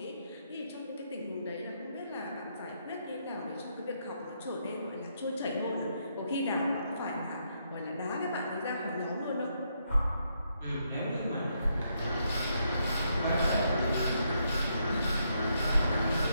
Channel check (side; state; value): both; inverted; correlation -0.77